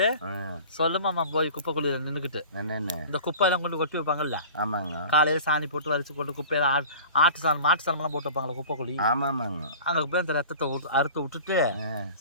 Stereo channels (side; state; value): both; inverted; correlation -0.41